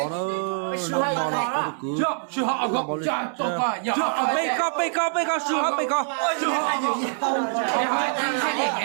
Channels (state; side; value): silent; left; 62 dB below the other